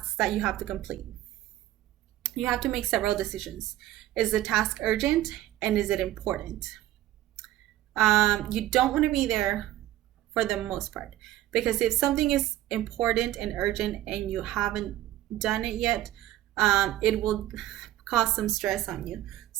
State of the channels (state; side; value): quieter; left; 14.3 dB